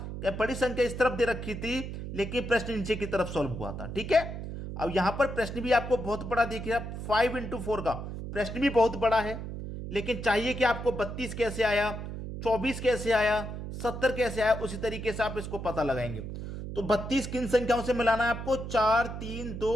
कि बड़ी संख्या इस तरफ दे रखी थी, लेकिन प्रश्न नीचे की तरफ सॉल्व हुआ था। ठीक है, अब यहां पर प्रश्न भी आपको बहुत बड़ा देखिए, 5x4 का प्रश्न भी बहुत बड़ा है। लेकिन चाहिए कि आपको 32 कैसे आया, 24 कैसे आया, 70 कैसे आया, उसी तरीके से आप इसको पता लगाएंगे। तो 32 किन संख्याओं से मिलाना है आपको, 4, 3,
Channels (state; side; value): noise; right; hum, 7 dB below the sound